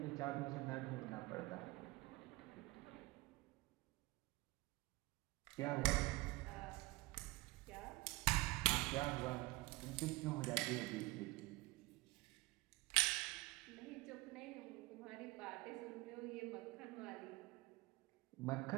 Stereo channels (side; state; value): left; quieter; 21.7 dB